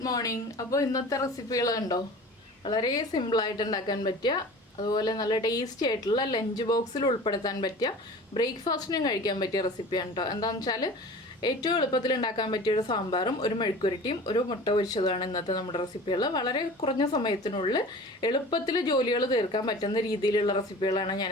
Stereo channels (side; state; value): both; normal; correlation 0.40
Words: morning. അപ്പോൾ ഇന്നത്തെ റെസിപ്പികൾ കണ്ടോ, വളരെ സിമ്പിളായിട്ട് ഉണ്ടാക്കാൻ പറ്റിയ, അതുപോലെ നല്ല ടേസ്റ്റി ആയിട്ടുള്ള ലഞ്ച് ബോക്സിൽ ഉൾപ്പെടുത്താൻ പറ്റിയ, ബ്രേക്ക്ഫാസ്റ്റിനും കഴിക്കാൻ പറ്റിയ റെസിപ്പിയാണ് കേട്ടോ. എന്താണെന്ന് വെച്ചാൽ ഏറ്റവും എളുപ്പത്തിൽ ഉണ്ടാക്കാൻ പറ്റിയ ഒരു സാമ്പാറും ഒരു മെഴുക്കുരട്ടിയും ഒരു മുട്ട പൊരിച്ചതുമാണ് ഇന്നത്തെ നമ്മുടെ റെസിപ്പികൾ. വളരെ കുറഞ്ഞ സമയത്തിനുള്ളിൽ എളുപ്പത്തിൽ ജോലികൾ തീർക്കാൻ പറ്റുന്ന രീതിയിലുള്ള റെസിപ്പികളാണ് ഞാൻ